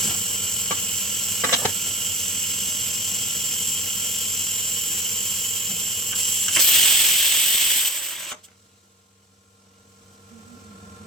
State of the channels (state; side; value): normal; both; correlation 0.36